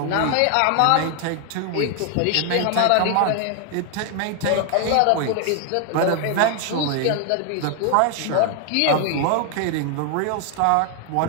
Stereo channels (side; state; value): both; different; correlation 0.01